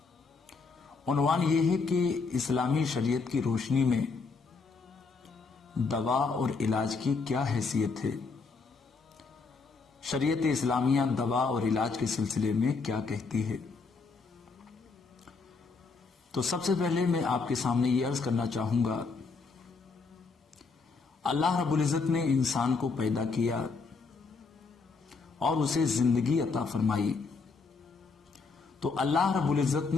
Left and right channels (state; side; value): quieter; right; 4.5 dB